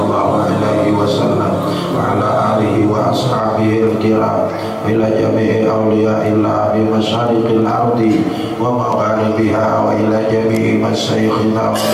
alaihi wasallam wa ala alihi wa ashabihi al-kiram ila jami'i awliya'illah bi masyariqil ardi wa magharibiha wa ila jami'i masyayikhina wa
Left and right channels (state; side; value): identical; both; correlation 1.00